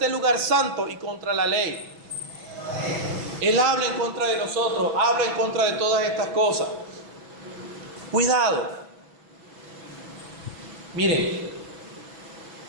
lugar santo y contra la ley. Él habla en contra de nosotros, habla en contra de todas estas cosas. Cuidado. Miren,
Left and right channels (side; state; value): left; late; 6.1 ms